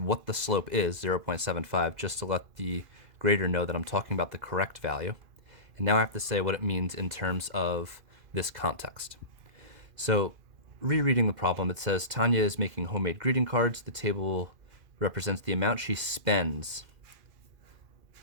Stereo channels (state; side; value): late; left; 2.5 ms